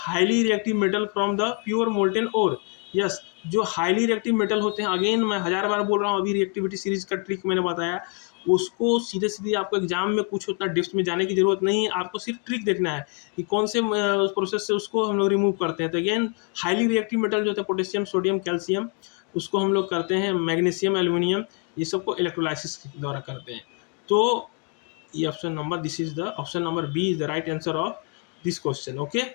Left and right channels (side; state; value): right; quieter; 36.9 dB